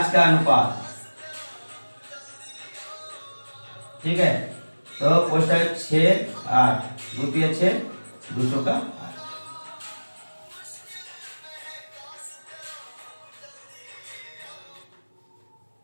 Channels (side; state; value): both; inverted; correlation -1.00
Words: का अनुपात, ठीक है। तो पोस्ट ऑफिस 6 8, 2 3 6, 200 का 8।